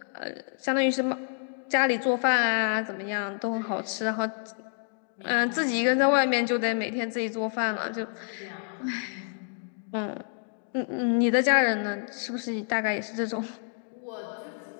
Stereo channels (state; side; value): silent; right; 59 dB below the other